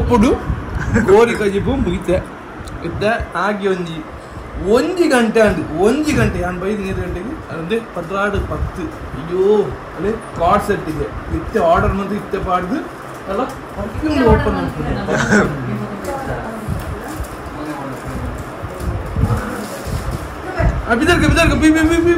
ಕೋರಿ ಕಜಿಬು ಮುಗಿತೆ ಇದ್ದ ಆಗಿ ಒಂಜಿ ಗಂಟೆ ನಾನು ಬೈದು 2 ಗಂಟೆಗೆ ಅದೇ 16:10 ಅಯ್ಯೋ ಅಲ್ಲೇ ಕಾರ್ಡ್ ಸೆಟ್ಟಿಗೆ ಇತ್ತೆ ಆರ್ಡರ್ ಮಂದು ಇತ್ತೆ ಪಾಡ್ದು ಅಲ್ಲ ಪರ್ಫ್ಯೂಮ್ ಓಪನ್ ಮಾಡ್ತೀನಿ ಬಿದರ್ಗ ಬಿ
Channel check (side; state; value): both; identical; correlation 1.00